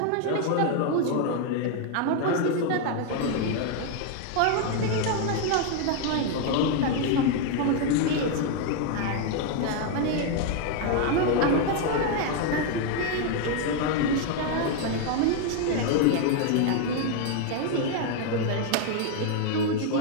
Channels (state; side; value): different; both; correlation 0.01